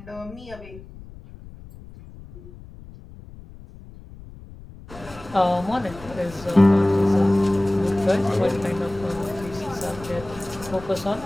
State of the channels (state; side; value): noise; left; rumble, 18 dB below the sound